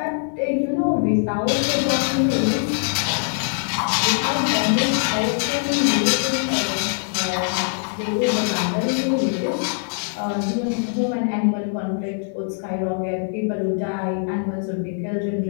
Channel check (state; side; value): silent; right; 59 dB below the other